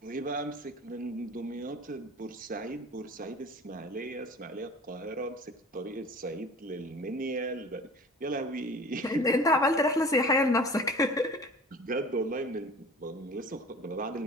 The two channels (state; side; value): normal; both; correlation 0.42